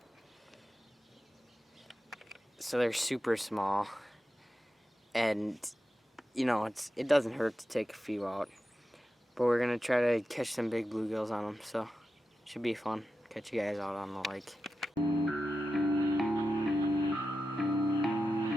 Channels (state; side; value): normal; both; correlation 0.91